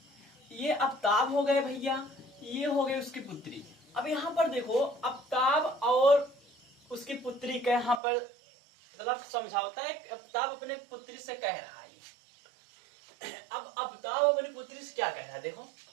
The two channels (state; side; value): drops out; left; at 8.0 s